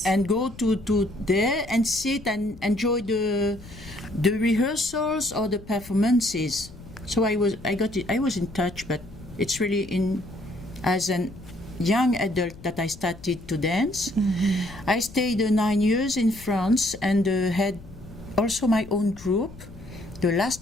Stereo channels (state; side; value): noise; left; rumble, 18 dB below the sound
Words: and go to there and sit and enjoy the rehearsals or the performances. So I was in touch, but it's really as an young adult that I started to dance. Mm-hmm. I stayed 9 years in France and had also my own group. The